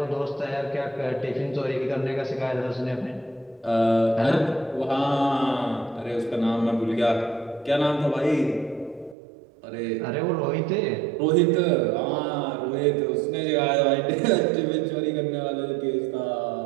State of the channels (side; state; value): left; drops out; at 9.2 s